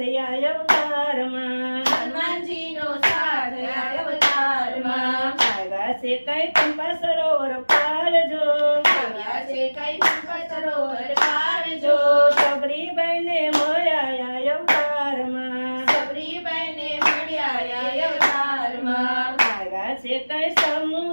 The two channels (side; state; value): both; inverted; correlation -1.00